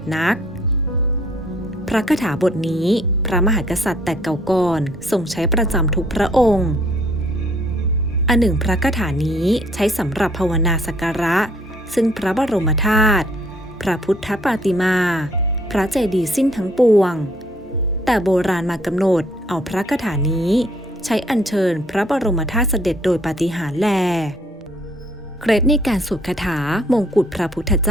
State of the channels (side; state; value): both; normal; correlation 0.63